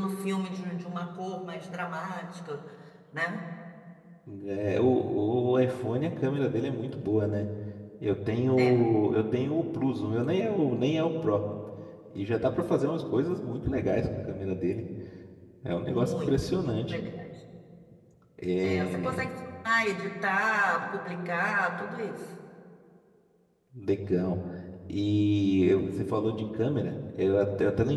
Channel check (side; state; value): both; identical; correlation 1.00